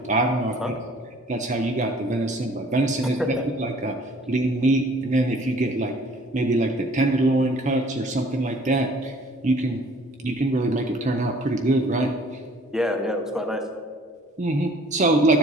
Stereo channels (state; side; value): normal; both; correlation 0.55